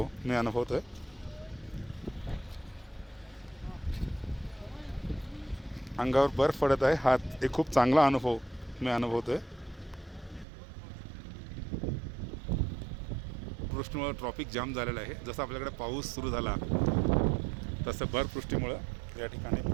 मी अनुभवतो आहे. अंगावर बर्फ पडत आहे, हा एक खूप चांगला अनुभव मी अनुभवतो आहे. वृष्टीमुळे ट्रॉफिक जाम झालेलं आहे. जसं आपल्याकडे पाऊस सुरू झाला तसं बर्फवृष्टीमुळं या ठिकाणी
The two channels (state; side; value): drops out; left; at 10.5 s